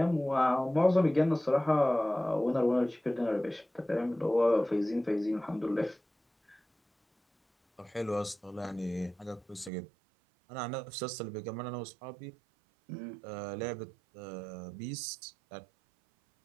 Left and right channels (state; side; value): drops out; left; at 9.7 s